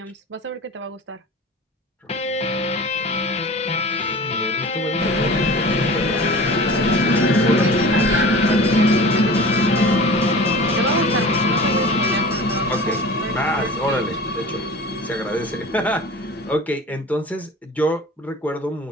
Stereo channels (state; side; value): normal; both; correlation 0.38